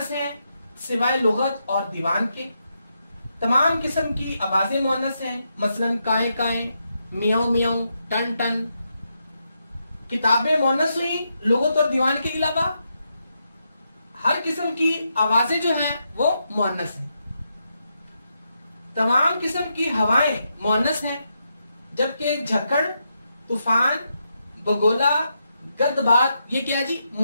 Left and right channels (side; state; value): both; inverted; correlation -0.83